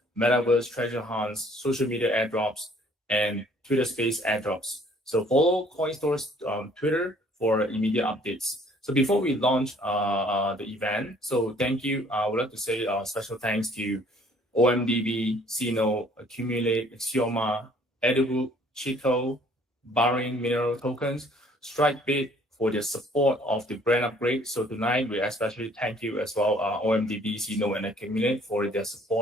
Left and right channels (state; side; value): normal; both; correlation 0.58